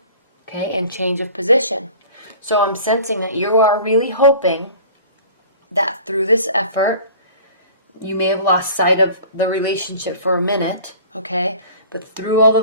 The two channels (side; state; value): both; inverted; correlation -0.44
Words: okay, and change of position. So I'm sensing that you are really hoping that through this effort, you may have lost sight of the relationship for a minute, okay, but through all